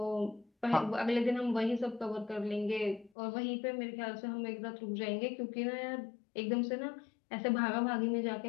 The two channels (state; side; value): drops out; right; at 3.1 s